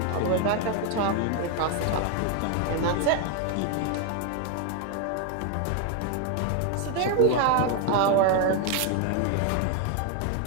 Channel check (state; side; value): different; both; correlation 0.01